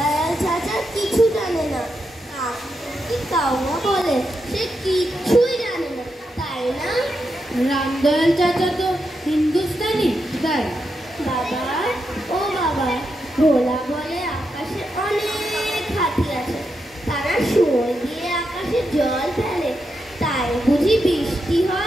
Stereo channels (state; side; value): normal; both; correlation 0.85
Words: চাচা কিছু জানে না। কি কাউয়া বলে, সে কিছুই জানে না, তাই না? রামদয়াল চাচা তো হিন্দুস্তানি, তাই? বাবা, ও বাবা, ভোলা বলে আকাশে অনেক হাতি আছে, তারা শুয়োর দিয়ে আকাশে জল ফেলে, তাই বুঝি বৃষ্টি